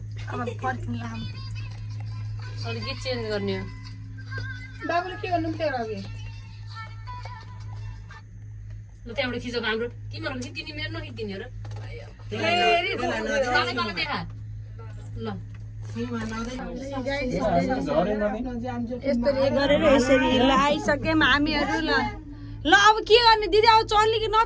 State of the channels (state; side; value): identical; both; correlation 1.00